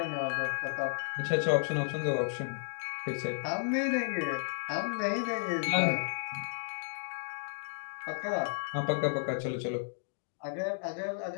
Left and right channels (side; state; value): right; silent; digital silence